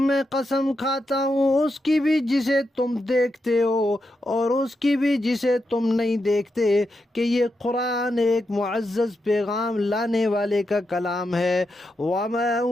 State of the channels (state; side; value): normal; both; correlation 0.85